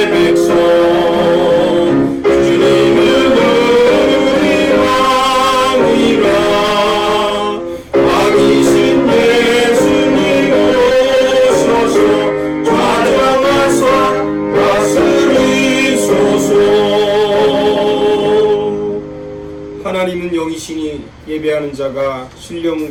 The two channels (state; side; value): identical; both; correlation 1.00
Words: 하나님은 영이시니 예배하는 자가